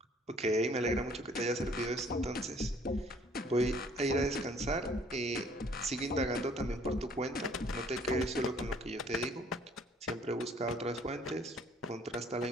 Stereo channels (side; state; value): both; normal; correlation 0.59